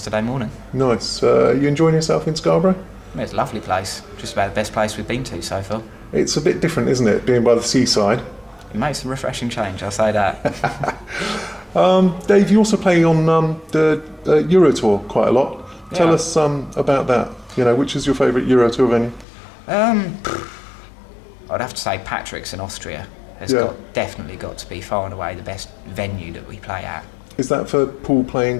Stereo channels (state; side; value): drops out; right; at 19.2 s